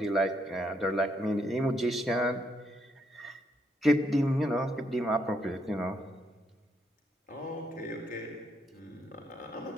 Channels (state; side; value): normal; both; correlation 0.75